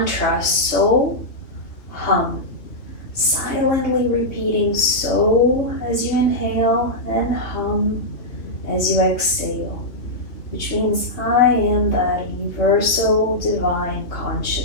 So Hum. Silently repeating So as you inhale and Hum as you exhale, which means I am that universal divine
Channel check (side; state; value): right; late; 2.8 ms